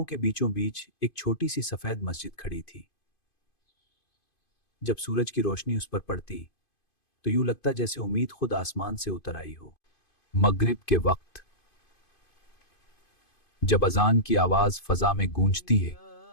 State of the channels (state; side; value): late; right; 2.5 ms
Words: के बीचों बीच एक छोटी सी सफेद मस्जिद खड़ी थी। जब सूरज की रोशनी उस पर पड़ती तो यूं लगता जैसे उम्मीद खुद आसमान से उतर आई हो। मगरिब के वक्त जब अजान की आवाज फजा में गूंजती है